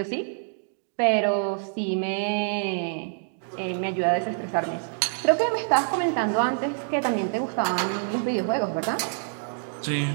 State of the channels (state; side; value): silent; left; digital silence